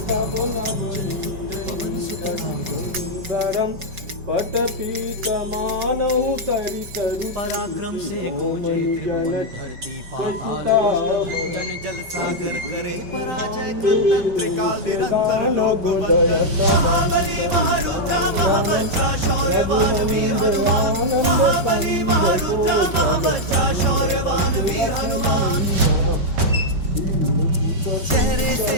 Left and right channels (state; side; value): late; left; 5.2 ms